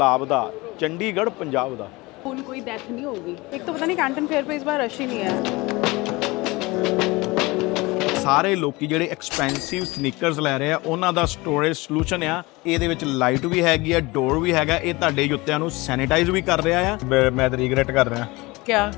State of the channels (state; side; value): quieter; right; 22.9 dB